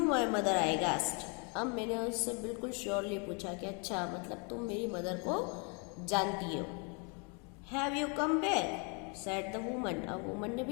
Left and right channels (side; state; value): right; quieter; 35.1 dB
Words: my mother I guessed. अब मैंने उससे बिल्कुल श्योरली पूछा कि अच्छा, मतलब तुम मेरी मदर को जानती हो. Have you come back said the woman. अब वुमन ने